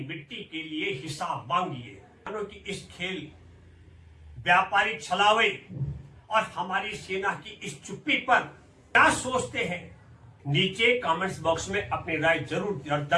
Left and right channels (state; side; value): identical; both; correlation 1.00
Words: के लिए हिसाब मांगिए। कि इस खेल, व्यापारी छलावे और हमारी सेना की इस चुप्पी पर क्या सोचते हैं? नीचे कमेंट्स बॉक्स में अपनी राय जरूर